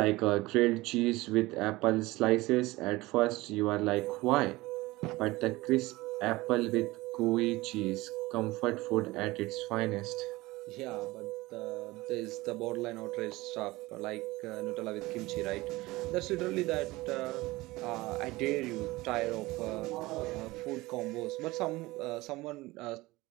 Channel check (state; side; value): quieter; left; 20.2 dB